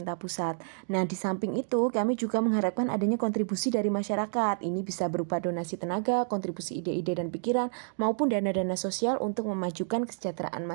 pusat. Nah, di samping itu kami juga mengharapkan adanya kontribusi dari masyarakat. Ini bisa berupa donasi tenaga, kontribusi ide-ide dan pikiran, maupun dana-dana sosial untuk memajukan kesejahteraan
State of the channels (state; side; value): silent; left; digital silence